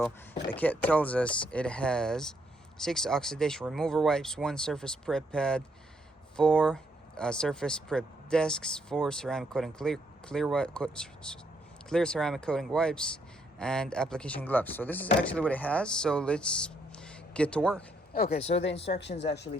the kit tells us it has 6 oxidation remover wipes, 1 surface prep pad, 4 surface prep discs, 4 ceramic coating clear ceramic coating wipes, and application gloves. So this is actually what it has, so let's get to work. Okay, so the instructions actually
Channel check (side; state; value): both; normal; correlation 0.73